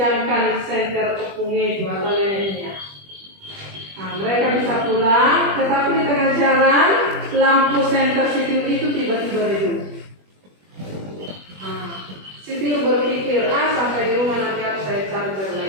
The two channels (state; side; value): late; left; 21 ms